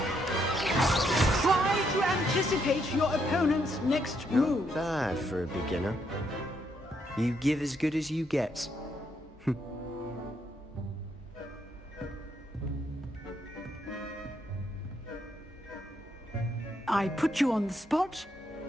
Try to anticipate your opponent's next move. Not bad for a beginner. You give as good as you get. I put you on the spot,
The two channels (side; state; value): both; normal; correlation 0.75